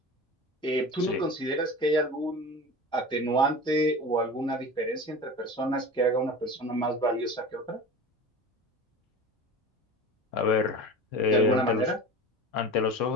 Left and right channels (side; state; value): both; normal; correlation 0.34